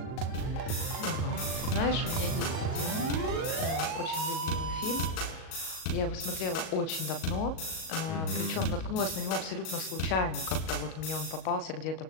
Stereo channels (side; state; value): right; late; 38 ms